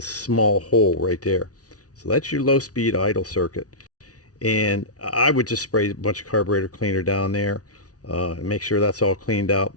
small hole right there. So that's your low speed idle circuit. And I would just spray a bunch of carburetor cleaner down there and make sure that's all cleaned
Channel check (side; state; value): right; late; 0.68 ms